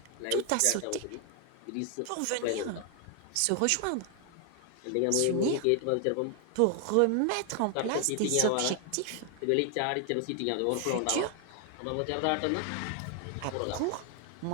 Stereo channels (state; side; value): different; both; correlation 0.00